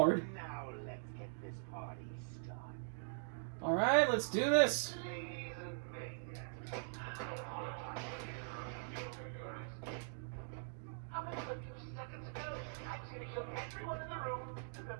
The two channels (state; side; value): silent; left; digital silence